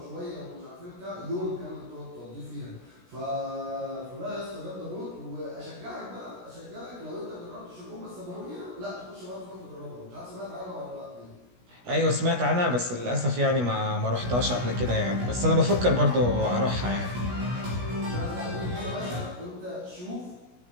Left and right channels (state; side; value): late; left; 16 ms